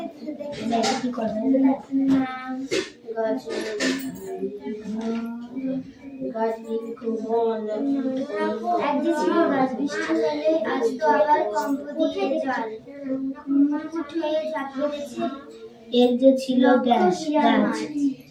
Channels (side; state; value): both; identical; correlation 1.00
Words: এর যে ছিল গ্যাস গাছ,